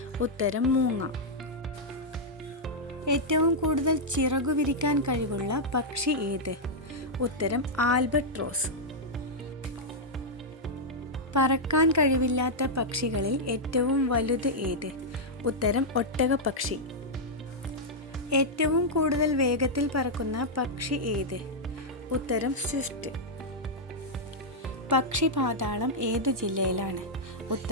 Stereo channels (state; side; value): normal; both; correlation -0.05